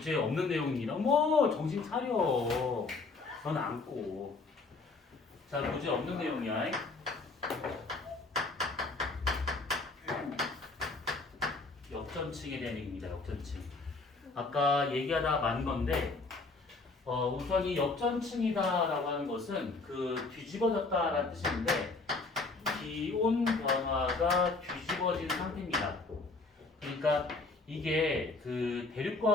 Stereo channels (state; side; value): quieter; right; 3.7 dB